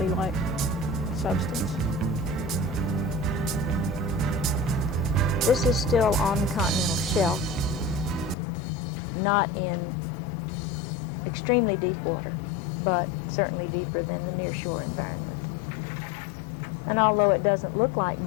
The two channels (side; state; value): right; drops out; at 8.3 s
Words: substance. This is still on the continental shelf, not in extremely deep water, but certainly deeper than the nearshore environment. And although it doesn't look like